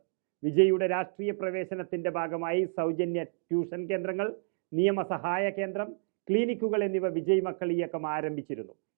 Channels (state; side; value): silent; left; digital silence